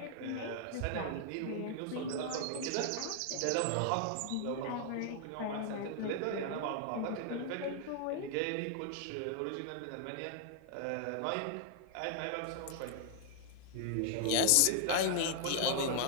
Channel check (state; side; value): different; both; correlation 0.00